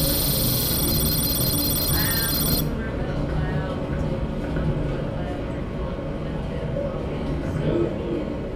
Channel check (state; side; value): identical; both; correlation 1.00